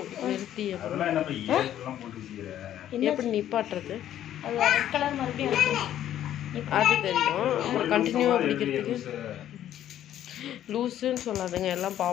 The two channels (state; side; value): quieter; right; 11.5 dB